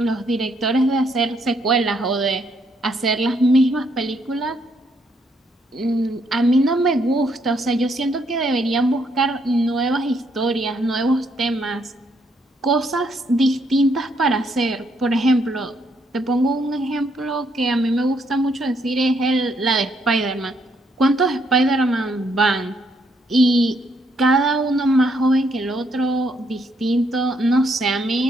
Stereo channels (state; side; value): normal; both; correlation 0.72